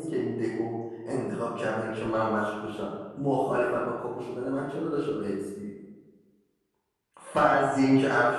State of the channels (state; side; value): identical; both; correlation 1.00